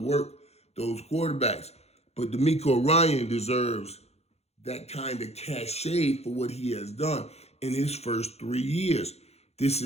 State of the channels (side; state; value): right; late; 0.31 ms